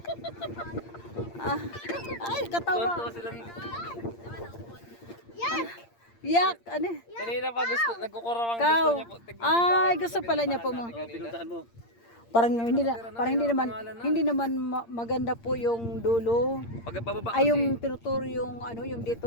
Ah. Ay, katawa. Tonto silang... Yak, ano? Kanina pa gusto, nagkukurawang Ikaw. gusto niya po. Tignan mo Ay, tayo, gusto pala niya po mo. pinuntahan mo. Parang hindi naman maganda po yung dulo. Pagpababa Ay, kasi. yung tinuturo yung ano, yung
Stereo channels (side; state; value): right; late; 8.7 ms